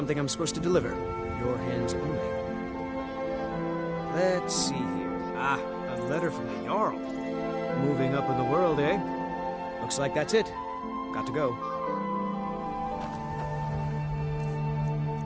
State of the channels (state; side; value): identical; both; correlation 1.00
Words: I'm supposed to deliver. Your hands only. Let's see here. Ah, a letter from the Jarl. Moving up in the world, eh? Looks like that's it. Got to go.